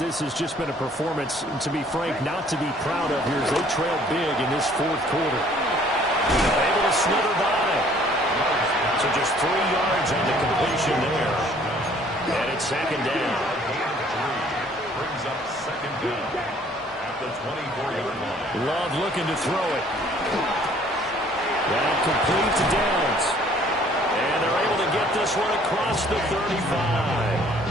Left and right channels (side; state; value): both; normal; correlation 0.58